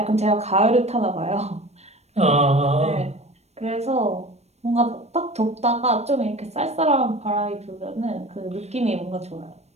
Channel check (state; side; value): late; left; 0.31 ms